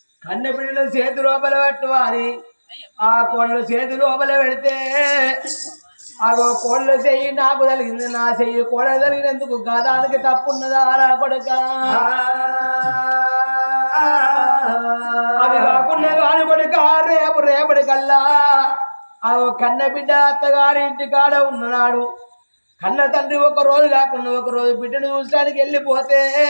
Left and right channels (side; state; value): both; inverted; correlation -1.00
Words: కన్న బిడ్డల చేతి లోపల పెట్టువాలి ఆ కోళ్ళ చేతి లోపల పెడితే అగో కోళ్ళ చెయ్యి నాకు తగిలింది నా చెయ్యి కోళ్ళ తగిలినందుకు గదానికి తప్పున్నదా రా కొడుక అది కాకుండా కాని కొడుక రేపటి కల్లా అగో కన్న బిడ్డ అత్తగారి ఇంటి కాడ ఉన్నాడు కన్న తండ్రి ఒక రోజు కాకుండా ఒక రోజు బిడ్డను చూసడానికి వెళ్ళిపోతే